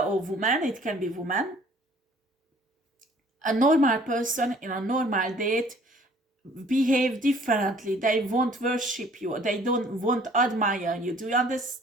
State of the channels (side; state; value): both; normal; correlation 0.56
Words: woman, it can be woman. A normal person in a normal date behave differently. They won't worship you. They won't admire you. Do you